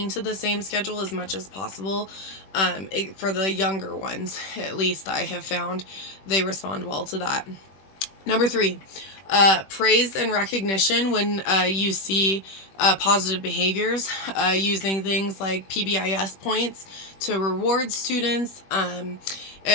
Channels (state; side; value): late; right; 21 ms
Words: to the same schedule as much as possible. For the younger ones, at least I have found they respond well to that. Number 3, Praise and recognition when you see positive behaviors, using things like PBIS points to reward students.